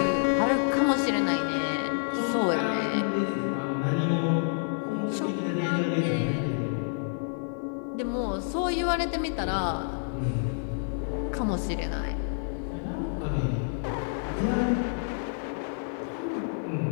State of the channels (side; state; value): right; silent; digital silence